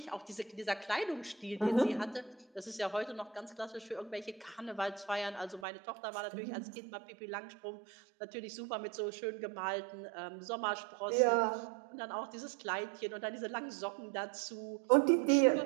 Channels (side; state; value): left; drops out; at 5.7 s